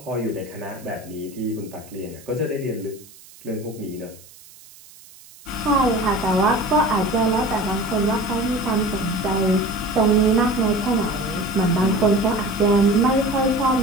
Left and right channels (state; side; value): noise; right; hiss, 22 dB below the sound